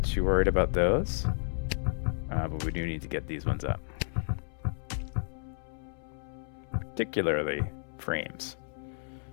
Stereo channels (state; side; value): silent; right; 56 dB below the other